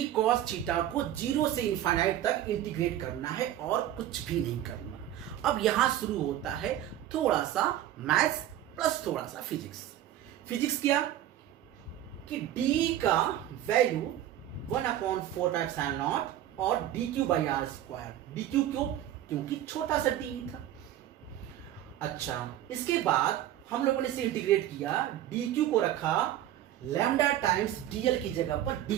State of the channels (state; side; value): quieter; left; 12.3 dB